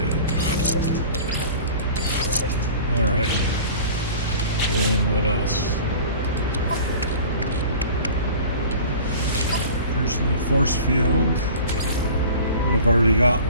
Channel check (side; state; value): both; inverted; correlation -0.41